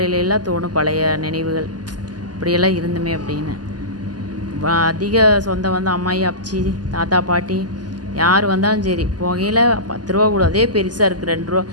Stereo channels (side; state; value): left; late; 0.70 ms